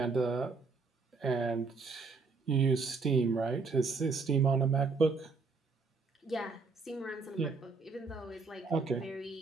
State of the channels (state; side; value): quieter; left; 4.3 dB